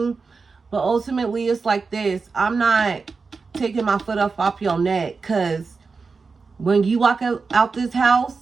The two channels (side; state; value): left; quieter; 4.6 dB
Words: But ultimately, it's like this. I'm not taking my foot off your neck. Because when you walk out this house,